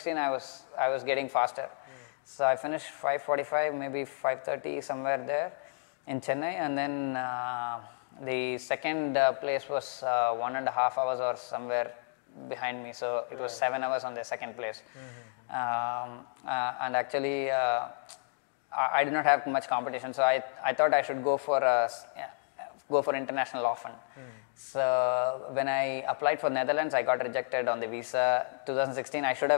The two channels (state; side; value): silent; right; digital silence